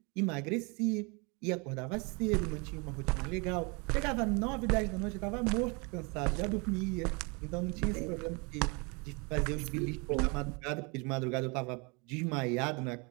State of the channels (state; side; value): quieter; left; 30.3 dB